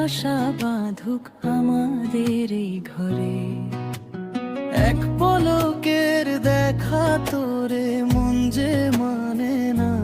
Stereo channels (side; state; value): both; identical; correlation 1.00